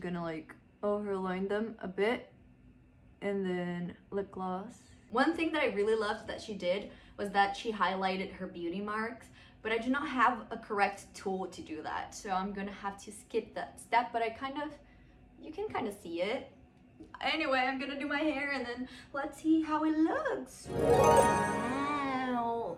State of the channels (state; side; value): identical; both; correlation 1.00